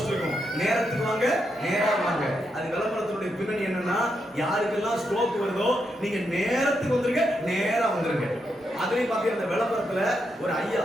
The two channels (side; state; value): both; normal; correlation 0.82